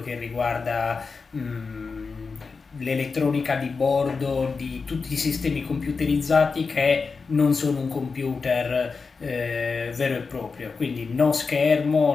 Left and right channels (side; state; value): right; quieter; 4.7 dB